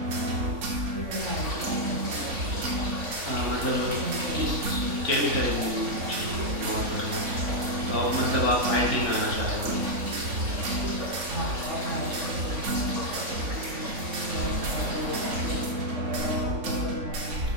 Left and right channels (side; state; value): left; late; 3.5 ms